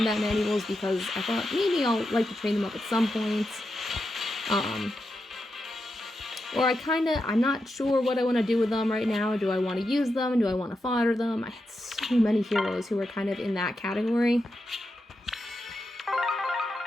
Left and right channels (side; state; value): both; normal; correlation 0.87